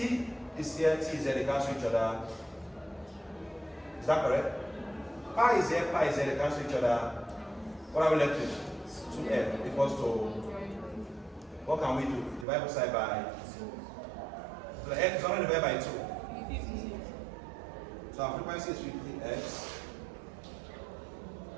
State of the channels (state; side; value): drops out; left; at 12.5 s